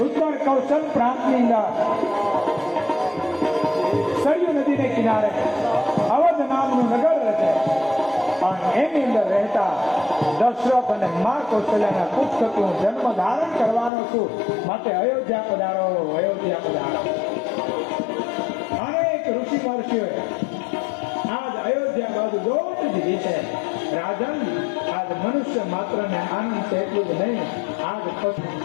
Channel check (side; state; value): right; drops out; at 13.9 s